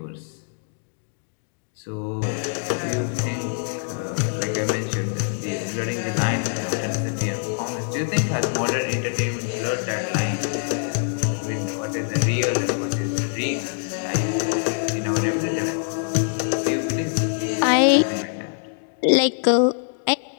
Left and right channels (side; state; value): right; silent; digital silence